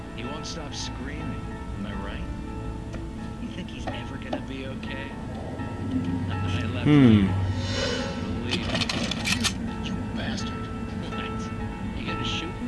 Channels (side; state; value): both; identical; correlation 1.00